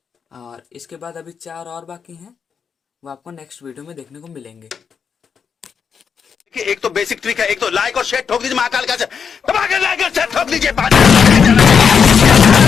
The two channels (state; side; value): quieter; right; 6.6 dB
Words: और इसके बाद अभी 4 और बाकी हैं, वो आपको नेक्स्ट वीडियो में देखने को मिलेंगे। एक तो बेसिक ट्रिक है, एक तो लाइक और शेयर ठोक दीजिए, महाकाल का लाइक और शेयर ठोक दीजिए।